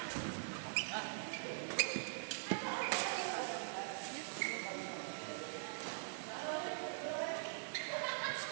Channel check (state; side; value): silent; left; digital silence